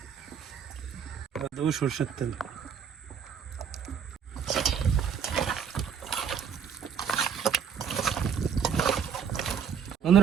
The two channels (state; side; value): quieter; left; 7.4 dB